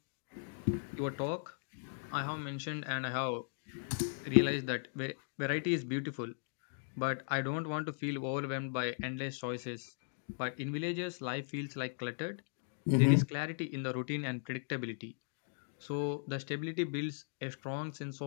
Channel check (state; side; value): silent; right; digital silence